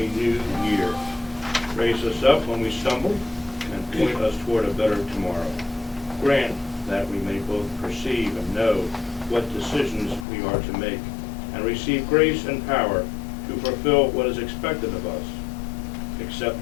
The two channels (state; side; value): drops out; right; at 10.2 s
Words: new year. Raise us up when we stumble and point us toward a better tomorrow. Grant that we may both perceive and know what decisions we are to make and receive grace and power to fulfill what is expected of us.